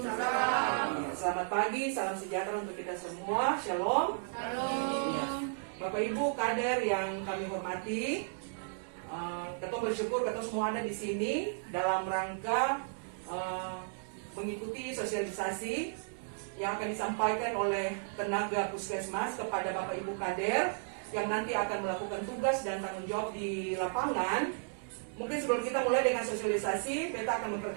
Ya, selamat pagi, salam sejahtera untuk kita semua. Shalom. Shalom. Bapak Ibu kader yang kami hormati, kita bersyukur kita semua ada di sini dalam rangka mengikuti sosialisasi yang akan disampaikan oleh tenaga puskesmas kepada Bapak Ibu kader yang nanti akan melakukan tugas dan tanggung jawab di lapangan. Mungkin sebelum kita mulai dengan sosialisasi, kita akan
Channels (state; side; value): silent; left; digital silence